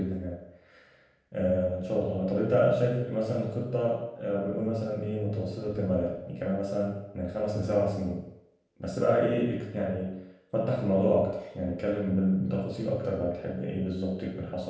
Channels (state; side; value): identical; both; correlation 1.00